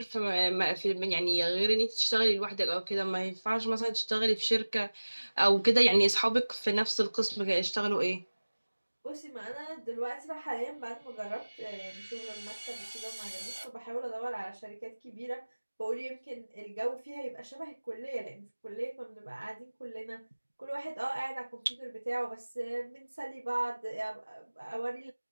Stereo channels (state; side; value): inverted; both; correlation -1.00